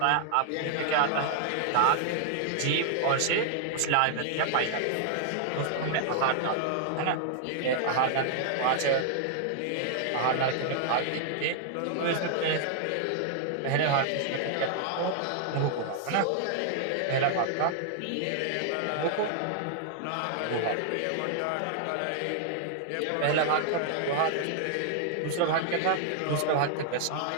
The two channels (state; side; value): different; both; correlation -0.01